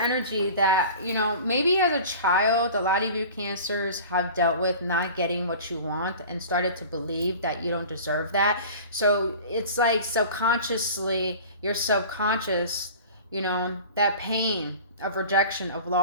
that, you know, maybe as a child, a lot of you Cancers have dealt with not getting what you want and started to believe that you don't deserve that. So it's like subconsciously, your subconscious, you know, that pain of rejection, of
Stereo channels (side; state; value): both; inverted; correlation -0.39